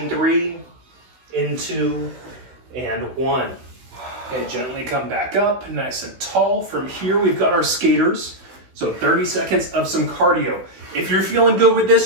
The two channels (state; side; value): late; left; 16 ms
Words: 3, in 2, and 1. Okay, gently come back up, nice and tall. From here, we've got our skaters. So 30 seconds of some cardio. If you're feeling good with